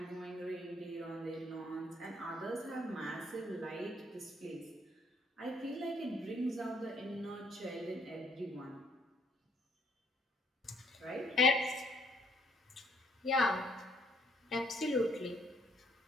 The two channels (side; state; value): both; normal; correlation 0.66